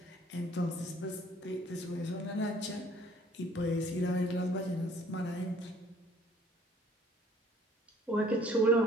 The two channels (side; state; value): both; normal; correlation 0.57